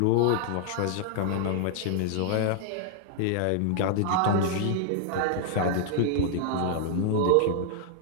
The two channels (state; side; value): different; both; correlation 0.00